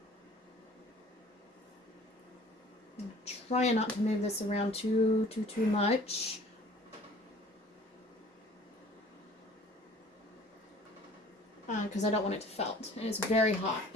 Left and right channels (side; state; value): both; normal; correlation 0.51